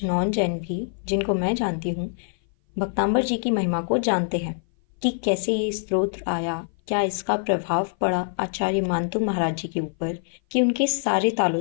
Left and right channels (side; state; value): right; silent; 57 dB below the other